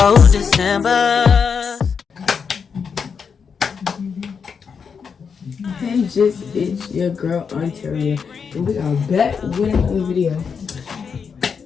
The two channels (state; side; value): quieter; right; 6.2 dB